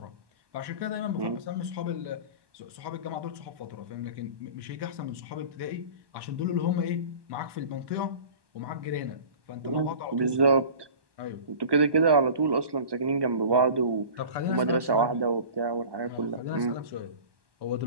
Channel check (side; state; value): left; late; 1.2 ms